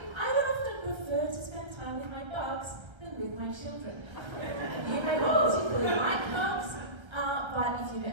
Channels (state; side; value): late; left; 1.3 ms